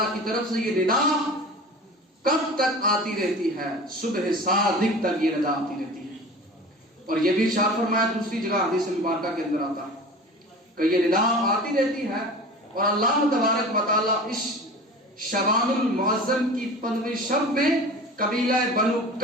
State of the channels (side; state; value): both; normal; correlation 0.37